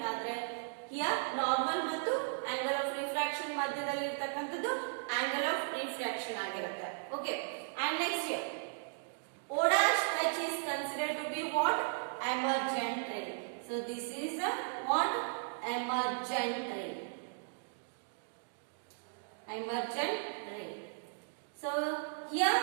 ಆದ್ರೆ ಹಿಯರ್ ನಾರ್ಮಲ್ ಮತ್ತು ಆಂಗಲ್ ಆಫ್ ರಿಫ್ರಾಕ್ಷನ್ ಮಧ್ಯದಲ್ಲಿ ಇರತಕ್ಕಂಥದ್ದು ಆಂಗಲ್ ಆಫ್ ರಿಫ್ರಾಕ್ಷನ್ ಆಗಿರುತ್ತೆ. Okay, and next here O dash H is considered to be what? Emergent ray. So this is a what? Emergent ray. Emergent ray. So here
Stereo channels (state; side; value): silent; left; digital silence